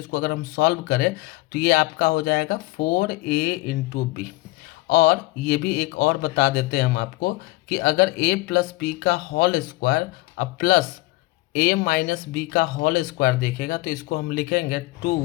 अगर हम सॉल्व करें तो ये आपका हो जाएगा 4a इंटू बी। और ये भी एक और बता देते हैं हम आपको कि अगर a प्लस बी का होल स्क्वायर अब प्लस a माइनस बी का होल स्क्वायर देखेगा तो इसको हम लिखेंगे 2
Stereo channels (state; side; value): quieter; right; 20.6 dB